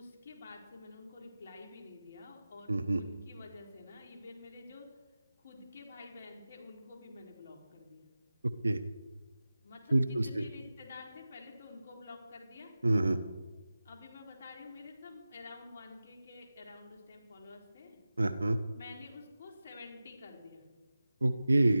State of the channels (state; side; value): inverted; both; correlation -0.95